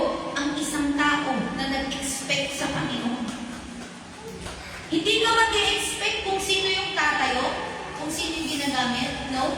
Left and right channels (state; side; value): identical; both; correlation 1.00